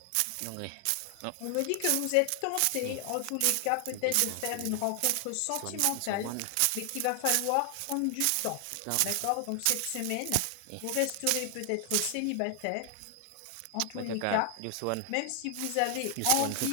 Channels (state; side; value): different; both; correlation 0.00